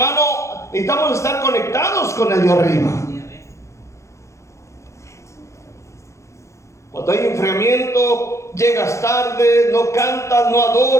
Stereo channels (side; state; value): right; late; 0.14 ms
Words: necesitamos estar conectados con el de arriba. Cuando hay enfriamiento, llegas tarde, no cantas, no